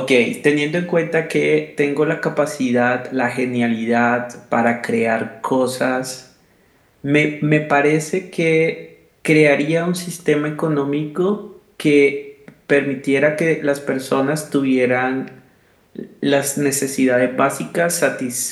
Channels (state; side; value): identical; both; correlation 1.00